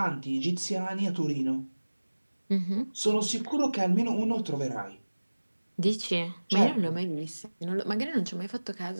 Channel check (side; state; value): both; inverted; correlation -1.00